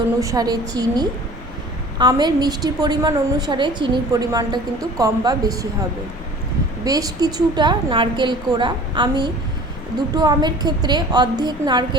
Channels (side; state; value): both; normal; correlation 0.45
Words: অনুসারে চিনি। আমের মিষ্টির পরিমাণ অনুসারে চিনির পরিমাণটা কিন্তু কম বা বেশি হবে। বেশ কিছুটা নারকেল কোড়া, আমি দুটো আমের ক্ষেত্রে অর্ধেক